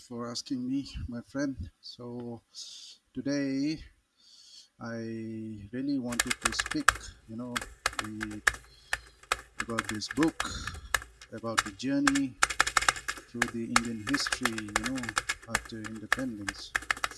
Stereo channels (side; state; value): both; identical; correlation 1.00